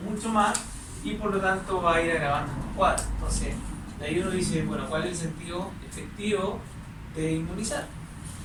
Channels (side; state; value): both; identical; correlation 1.00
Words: mucho más y por lo tanto va a ir agravando el cuadro. Entonces, de ahí uno dice, bueno, ¿cuál es el sentido efectivo de inmunizar?